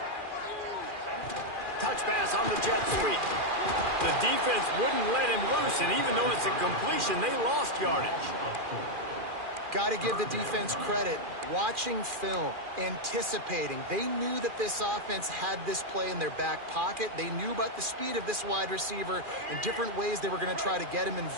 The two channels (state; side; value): late; left; 2.4 ms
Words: Touch pass on the jet sweep. The defense wouldn't let him loose, and even though it's a completion, they lost yardage. Got to give the defense credit. Watching film, anticipating. They knew that this offense had this play in their back pocket. They knew about the speed of this wide receiver and different ways they were going to try to get him